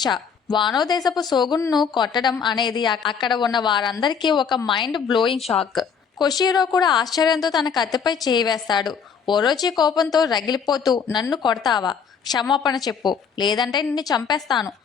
వానో దేశపు సోగున్ను కొట్టడం అనేది అక్కడ ఉన్న వారందరికీ ఒక మైండ్ బ్లోయింగ్ షాక్. కొషిరో కూడా ఆశ్చర్యంతో తన కత్తిపై చేయి వేస్తాడు. ఓరోచి కోపంతో రగిలిపోతూ, నన్ను కొడతావా? క్షమాపణ చెప్పు, లేదంటే నిన్ను చంపేస్తాను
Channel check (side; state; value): right; quieter; 6.6 dB